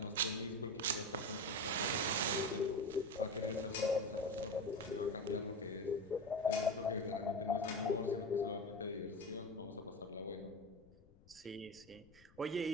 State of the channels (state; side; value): noise; left; rumble, 26 dB below the sound